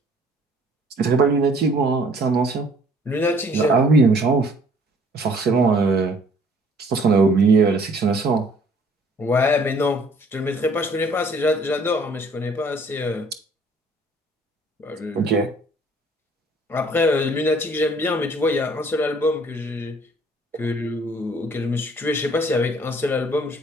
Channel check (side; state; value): both; normal; correlation 0.58